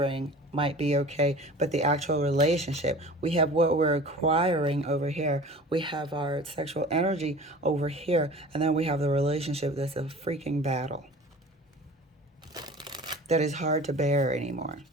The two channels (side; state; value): both; normal; correlation 0.41